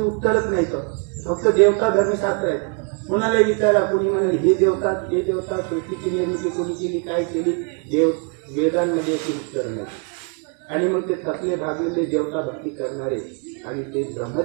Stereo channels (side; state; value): left; quieter; 38.4 dB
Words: उत्तरच नाही. फक्त देवता धर्मशास्त्र आहेत. कोणाला विचारा, कोणी म्हणाले हे देवता, ते देवता, सृष्टीची निर्मिती कोणी केली, काय केली, वेदांमध्ये याची उत्तर नाही. आणि मग ते थकले, भागलेले देवता भक्ती करणारे आणि ते